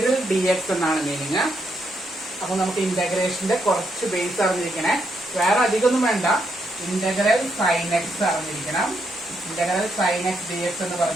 dx എന്നാണ് മീനിങ്. അപ്പൊ നമുക്ക് ഇന്റഗ്രേഷന്റെ കുറച്ച് ബേസ് അറിഞ്ഞിരിക്കണേ, വേറെ അധികമൊന്നും വേണ്ട. ഇന്റഗ്രൽ സൈൻ എക്സ് അറിഞ്ഞിരിക്കണം. ഇന്റഗ്രൽ സൈൻ എക്സ് dx എന്ന്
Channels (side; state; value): both; normal; correlation 0.78